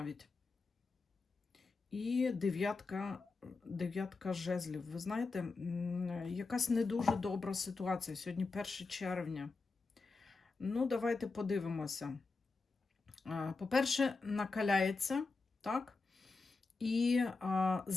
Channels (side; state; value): right; quieter; 4.0 dB